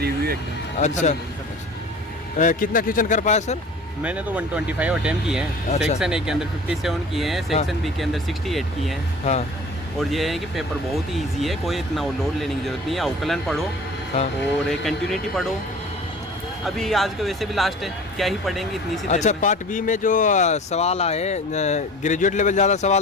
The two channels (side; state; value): both; normal; correlation 0.42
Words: एकदम। अच्छा। कितना क्वेश्चन कर पाया सर? मैंने तो 125 अटेम्प्ट किए हैं। अच्छा। सेक्शन ए के अंदर 57 किए हैं, सेक्शन बी के अंदर 68 किए हैं। हाँ और ये है कि पेपर बहुत ही इजी है, कोई इतना लोड लेने की जरूरत नहीं है। अवकलन पढ़ो हाँ। और कंटिन्यूटी पढ़ो। अभी आज का वैसे भी लास्ट है, क्या ही पढ़ेंगे इतनी सी देर अच्छा, में। पार्ट बी में जो सवाल आए ग्रेजुएट लेवल ज़्यादा